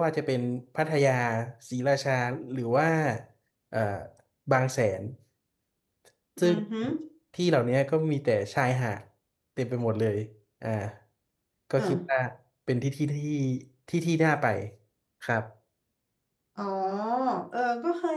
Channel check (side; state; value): both; identical; correlation 1.00